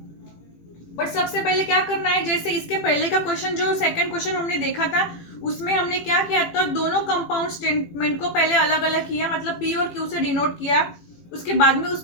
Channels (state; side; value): late; right; 18 ms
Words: बट सबसे पहले क्या करना है, जैसे इसके पहले का क्वेश्चन जो सेकंड क्वेश्चन हमने देखा था उसमें हमने क्या किया था, दोनों कंपाउंड स्टेटमेंट को पहले अलग अलग किया, मतलब पी और क्यू से डिनोट किया, उसके बाद में